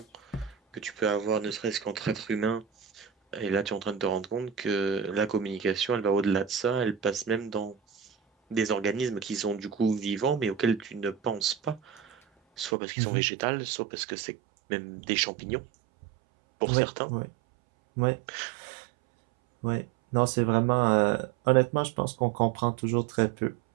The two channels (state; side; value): drops out; left; at 12.7 s